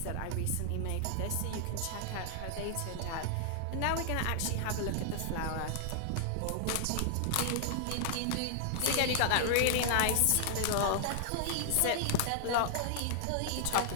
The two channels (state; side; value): different; both; correlation -0.01